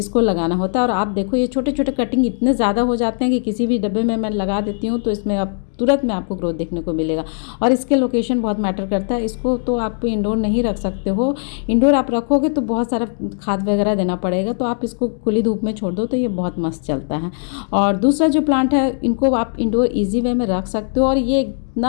लगाना होता है। और आप देखो ये छोटे छोटे कटिंग इतने ज़्यादा हो जाते हैं कि किसी भी डब्बे में मैं लगा देती हूँ तो इसमें अब तुरंत में आपको ग्रोथ देखने को मिलेगा। और इसके लोकेशन बहुत मैटर करता है। इसको तो आप इंडोर नहीं रख सकते हो। इंडोर आप रखोगे तो बहुत सारा खाद वगैरह देना पड़ेगा, तो आप इसको खुली धूप में छोड़ दो तो ये बहुत मस्त चलता है। और दूसरा जो प्लांट है इनको आप इंडोर ईजी वे में रख सकते हो। और ये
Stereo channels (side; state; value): right; silent; digital silence